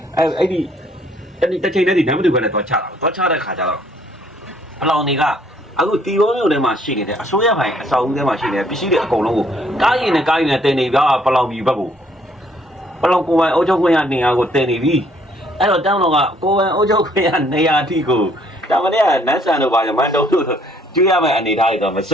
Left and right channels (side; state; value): both; normal; correlation 0.64